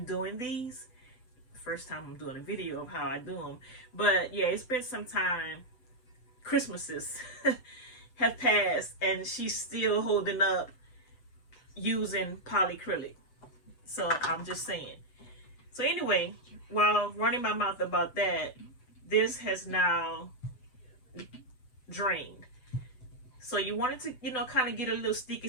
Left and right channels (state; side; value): late; right; 7.9 ms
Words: doing these. First time I'm doing a video of how I do them. But yeah, it's been some time. Christmases have passed and she's still holding up using polycrylic. So I'm just saying. So anyway, while running my mouth about that, this has now drained. So you want it to, you know, kind of get a little sticky